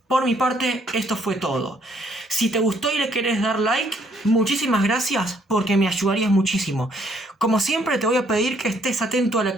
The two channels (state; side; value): normal; both; correlation 0.66